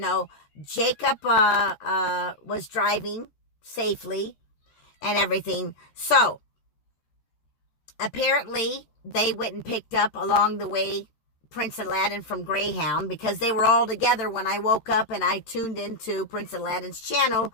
Jacob was driving safely and everything. So apparently they went and picked up along the way Prince Aladdin from Greyhound because they were all together when I woke up and I tuned into Prince Aladdin's channel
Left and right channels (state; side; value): late; right; 13 ms